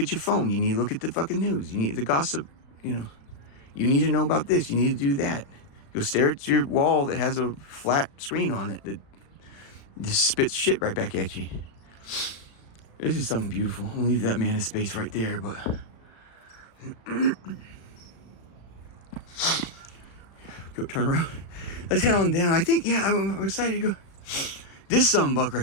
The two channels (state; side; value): late; right; 36 ms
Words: your phone. You need to look at the fucking news. You need the gossip, You need to know about this. You need to do that. You'll stare at your wall that has a flat screen on it that just spits shit right back at you. This is something beautiful. I'll leave that man in space right there, but go turn around. Let's head on down. I think, yeah, I'm excited to go. This buck